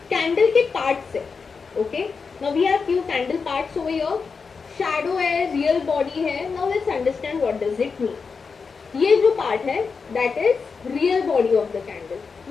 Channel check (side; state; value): right; quieter; 5.1 dB